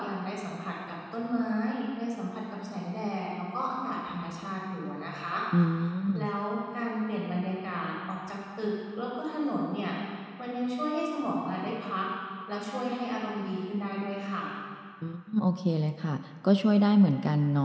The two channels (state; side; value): identical; both; correlation 1.00